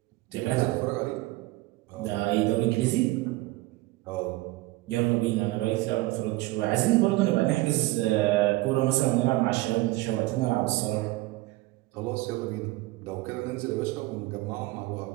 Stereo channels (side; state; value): left; quieter; 19.2 dB